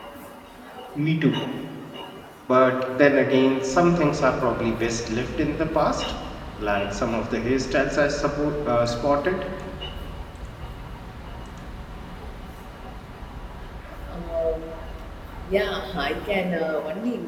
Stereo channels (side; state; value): both; identical; correlation 1.00